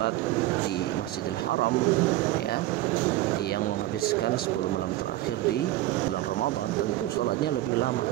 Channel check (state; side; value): quieter; left; 15.9 dB